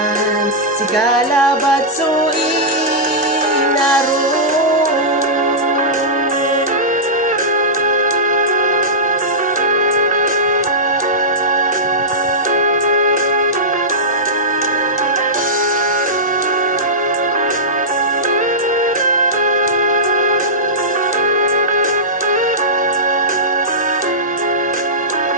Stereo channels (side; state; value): both; normal; correlation -0.15